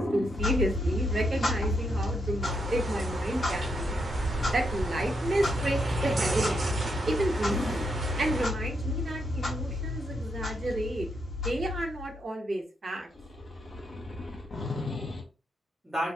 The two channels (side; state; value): both; normal; correlation 0.79